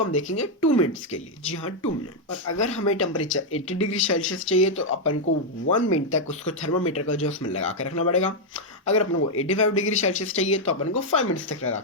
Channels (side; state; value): both; normal; correlation 0.00